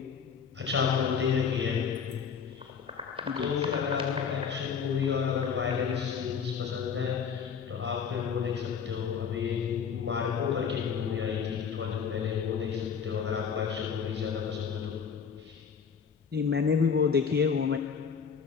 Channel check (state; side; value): quieter; right; 6.6 dB